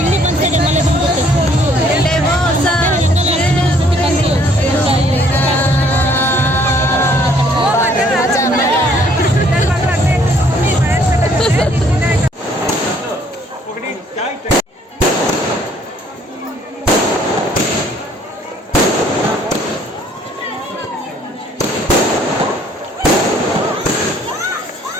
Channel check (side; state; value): both; normal; correlation 0.62